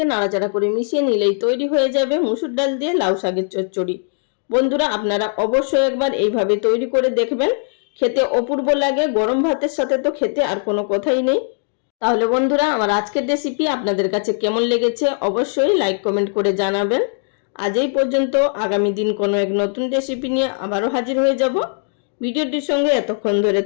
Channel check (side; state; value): right; silent; digital silence